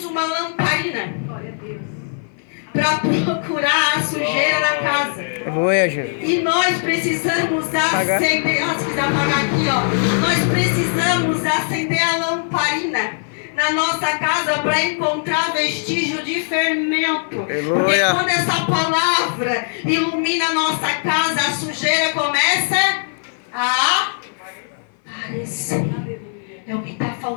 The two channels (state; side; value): silent; right; 55 dB below the other